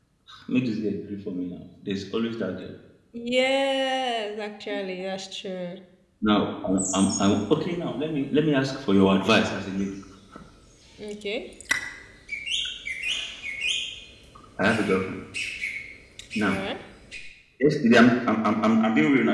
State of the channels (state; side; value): identical; both; correlation 1.00